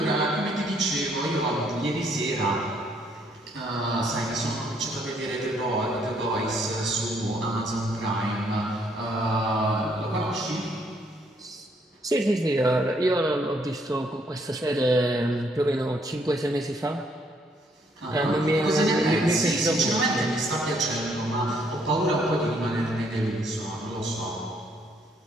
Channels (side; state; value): both; normal; correlation 0.69